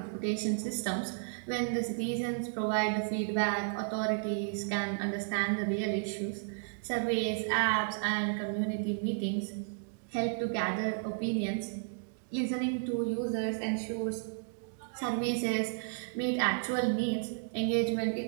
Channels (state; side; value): silent; left; digital silence